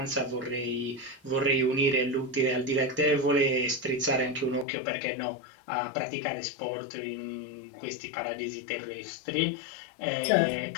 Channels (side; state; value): right; drops out; at 4.7 s